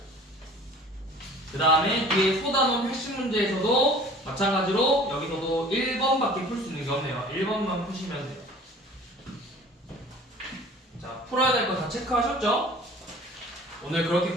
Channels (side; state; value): both; normal; correlation 0.47